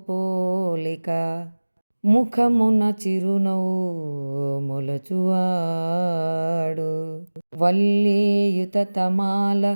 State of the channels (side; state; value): both; inverted; correlation -1.00